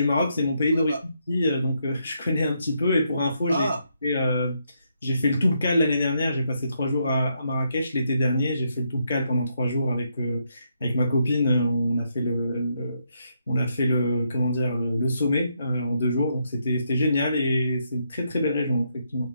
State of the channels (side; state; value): both; inverted; correlation -0.78